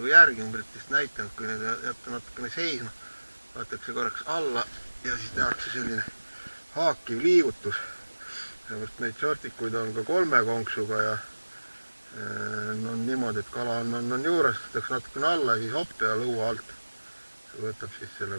järgi, ma pärast vist näitanud, kui need jätta natukene seisma, võetakse korraks alla ja siis tehakse selline haakiv liigutus. Sellepärast neid shortikuid on ka 3 konksuga ja on niimoodi, et kala on juures, tõstakse natukene alla, siis hopp ja lõua alt võtab siis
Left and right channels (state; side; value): inverted; both; correlation -1.00